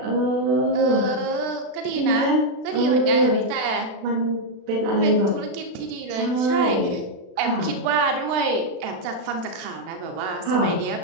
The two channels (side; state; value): left; late; 36 ms